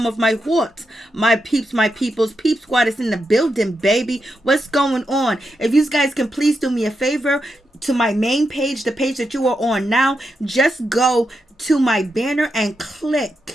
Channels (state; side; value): normal; both; correlation 0.85